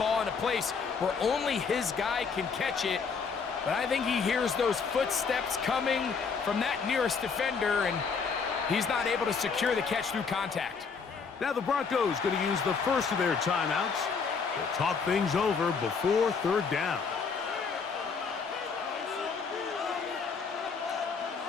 in a place where only his guy can catch it. But I think he hears those footsteps coming from that nearest defender, and he's not able to secure the catch through contact. Now the Broncos going to use the first of their timeouts. They'll talk things over before 3rd down.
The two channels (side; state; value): right; quieter; 5.4 dB